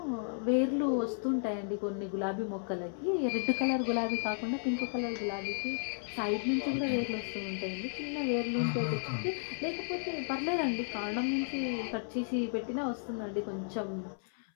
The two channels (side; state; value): right; silent; 55 dB below the other